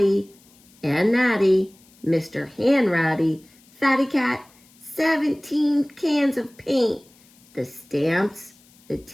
and Natty, Mr. Hanratty, Fatty Cat, 17 cans of paint, the stamps, the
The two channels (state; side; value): noise; left; hiss, 29 dB below the sound